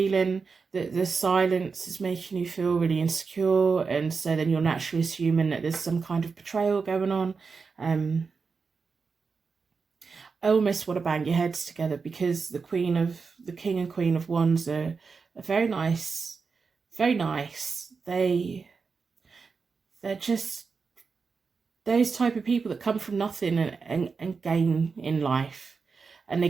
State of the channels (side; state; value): left; quieter; 5.0 dB